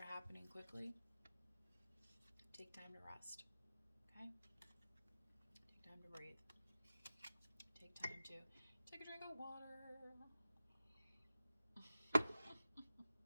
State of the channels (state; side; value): inverted; both; correlation -0.95